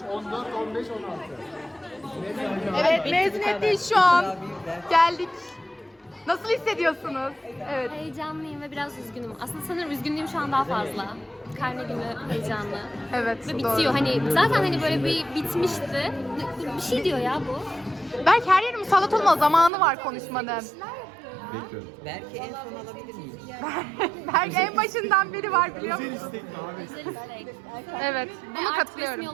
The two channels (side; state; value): left; drops out; at 19.7 s